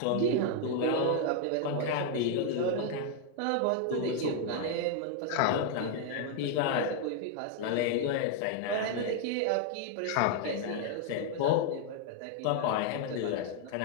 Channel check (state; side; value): different; both; correlation 0.00